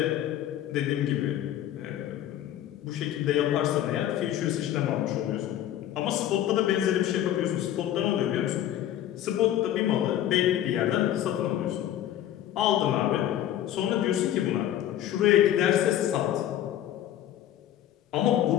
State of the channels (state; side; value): quieter; right; 11.9 dB